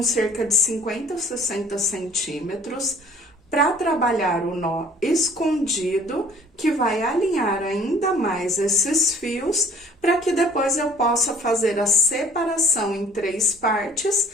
cerca de 50 ou 60 centímetros para trabalhar o nó escondido, que vai alinhar ainda mais esses fios, para que depois eu possa fazer a separação em 3 partes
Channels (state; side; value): normal; both; correlation 0.53